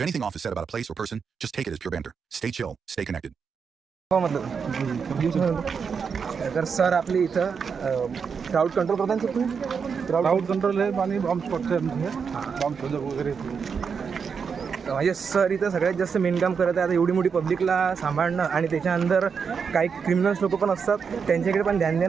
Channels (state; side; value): quieter; left; 6.1 dB